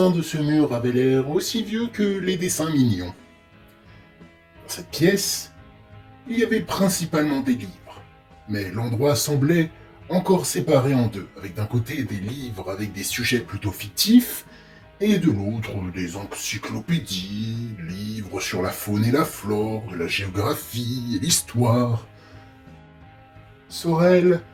de ce mur avaient l'air aussi vieux que les dessins mignons. Dans cette pièce, il y avait principalement des livres, mais l'endroit semblait encore séparé en deux, avec d'un côté des livres avec des sujets plutôt fictifs, et de l'autre des encyclopédies, livres sur la faune et la flore, de la géographie et l'histoire. Sorel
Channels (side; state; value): both; identical; correlation 1.00